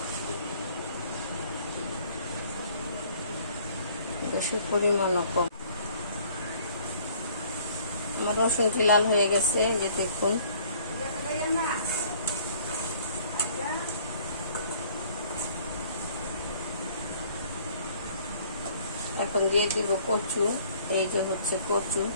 গ্যাসের পরিমাণও কম। আমার রসুনটি লাল হয়ে গেছে, যে দেখুন। এখন দিয়ে দিব কচু। এই যে হচ্ছে কচু।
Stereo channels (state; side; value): inverted; both; correlation -0.57